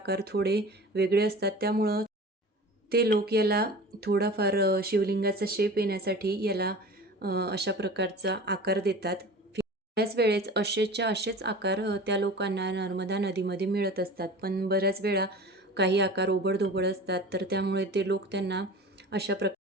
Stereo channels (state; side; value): normal; both; correlation 0.38